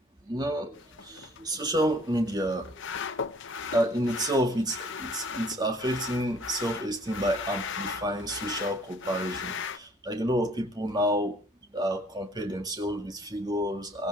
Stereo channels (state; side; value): normal; both; correlation 0.57